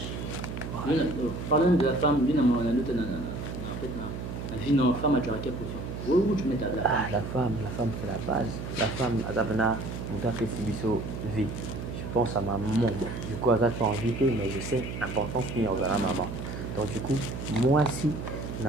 Parlons de la femme, la vie de la femme, tu as quelle position? Où tu mets la femme? La femme c'est la base. La femme, vie. Je pense à ma maman. Du coup, elle a invité, mais je sais l'importance qu'il y a à la maman. Donc, du coup, moi aussi,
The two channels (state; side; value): noise; right; hum, 7 dB below the sound